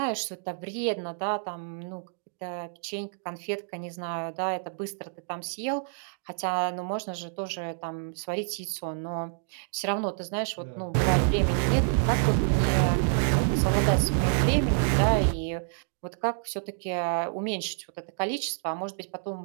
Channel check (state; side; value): silent; left; digital silence